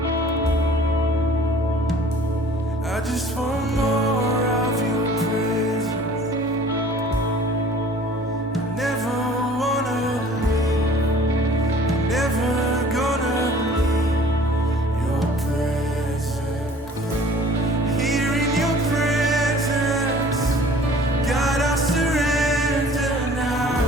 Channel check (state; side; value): normal; both; correlation 0.50